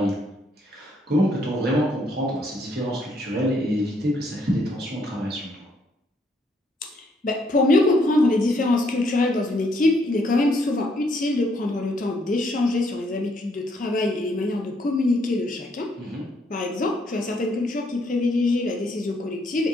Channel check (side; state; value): both; normal; correlation 0.71